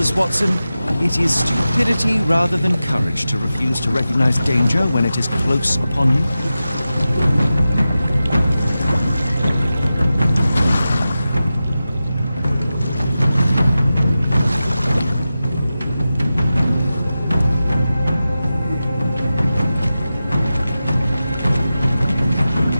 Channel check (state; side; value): inverted; both; correlation -0.93